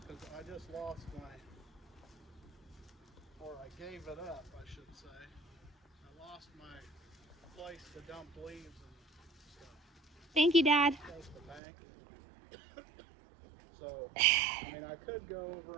Because I just lost or I gave it up, I should say. I lost my place to dump leaves and stuff. Thank you, Dad. Close to the bank. So, I mean, I could go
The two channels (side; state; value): left; drops out; at 11.6 s